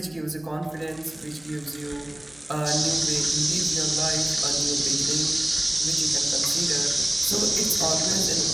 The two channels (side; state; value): right; noise; hum, 28 dB below the sound